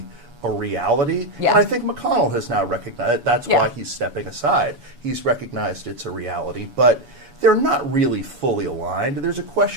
a reality. And I think McConnell has now recognized that's why he's stepping aside. He's recognized it's a reality, but they're not really fully aligned. There's a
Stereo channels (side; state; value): left; late; 7.1 ms